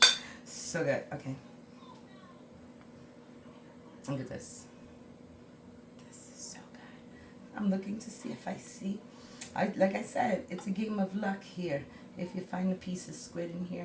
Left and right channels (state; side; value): identical; both; correlation 1.00